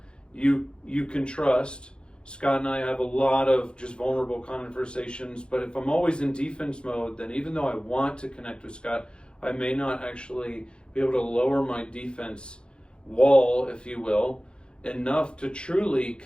you can trust. Scott and I have a lot of just vulnerable conversations, but if I'm always in defense mode, then even though I want to connect with Scott, I may not actually be able to lower my defense wall, if you will, enough to truly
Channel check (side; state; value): right; late; 0.053 ms